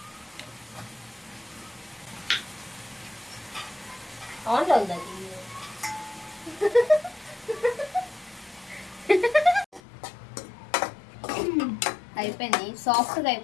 ఆన్లో ఉందా? అయిపోయింది, సాఫ్ట్గా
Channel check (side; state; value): right; drops out; at 9.8 s